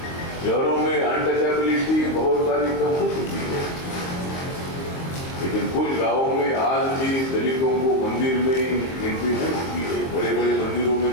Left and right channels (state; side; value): late; right; 23 ms